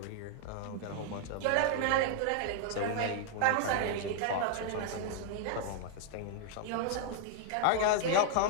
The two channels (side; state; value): both; different; correlation 0.00